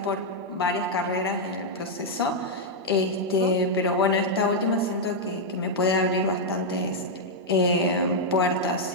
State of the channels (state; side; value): normal; both; correlation -0.04